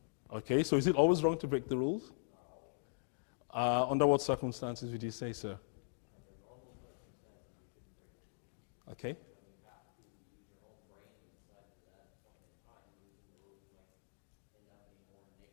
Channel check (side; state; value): right; silent; digital silence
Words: Okay, so is it always wrong to break the rules? Under what circumstances would you say, sir? Okay.